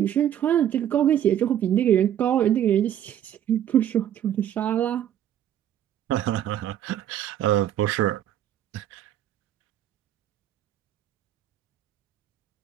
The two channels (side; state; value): left; quieter; 10.7 dB